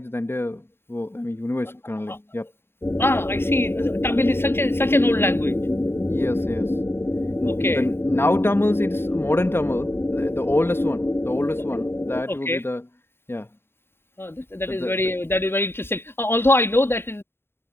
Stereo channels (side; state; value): right; late; 0.11 ms